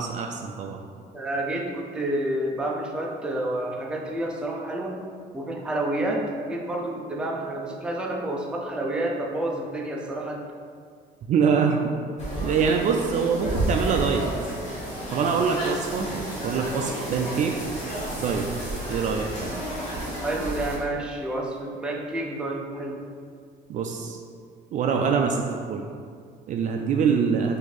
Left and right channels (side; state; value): left; quieter; 3.7 dB